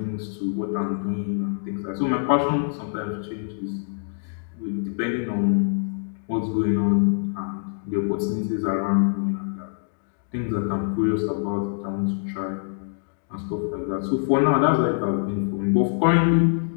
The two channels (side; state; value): right; silent; digital silence